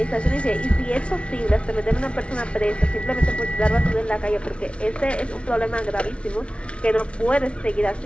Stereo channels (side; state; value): right; late; 0.060 ms